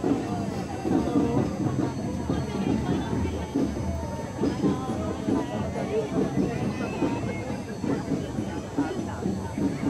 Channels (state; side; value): identical; both; correlation 1.00